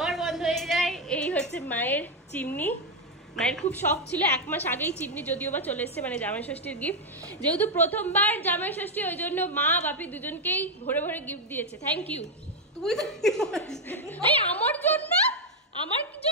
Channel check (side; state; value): both; normal; correlation 0.03